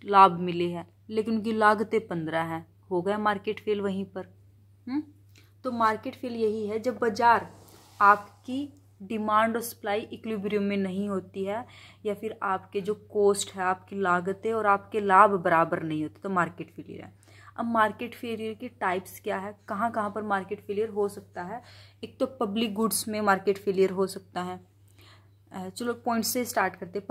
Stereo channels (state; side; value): identical; both; correlation 1.00